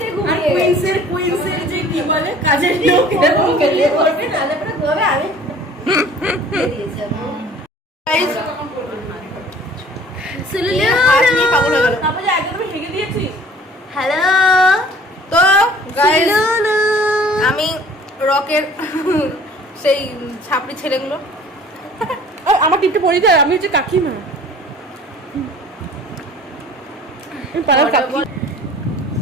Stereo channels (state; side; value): normal; both; correlation 0.50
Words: কুইন্সের যে কি বলে কাজের লোক এরকম খেলে করবে না, তারপরে ঘুমাবে। আমি দিয়েছি Guys, সুলুলু, হাত নিয়ে পাগল হয়ে গেল। হ্যালো তো গাইস, সুলুলু, আমি রকের সেই ছাপড়ি ছেলেগুলো, আমার টিপটা পড়ে যায়, আমি হচ্ছে কাকিমা, পাড়ার কাকি।